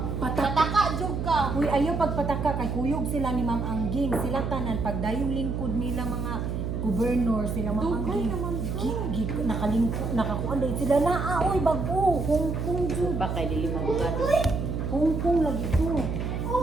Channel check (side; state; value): right; noise; hum, 2 dB below the sound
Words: Pataka jud ka. Uy, ayaw pagpataka kay kuyog sila ni Ma'am Angging. Sila tanan pagdayong lingkod nila mga gobernur sila Ma'am Dugay Angging. naman Nakalingkod, nakakuan dahil sila na oy bago. Hong Kong jud. Baka dili magugado. Hong Kong lagi to.